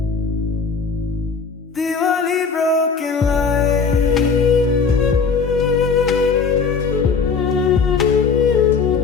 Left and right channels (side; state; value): right; quieter; 5.3 dB